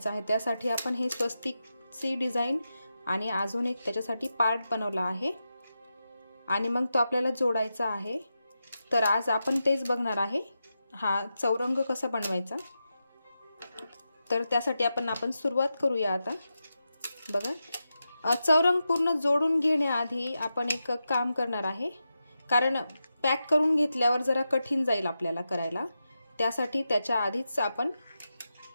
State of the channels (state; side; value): inverted; both; correlation -0.90